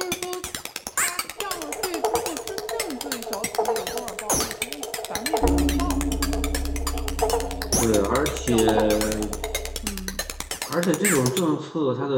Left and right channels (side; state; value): both; identical; correlation 1.00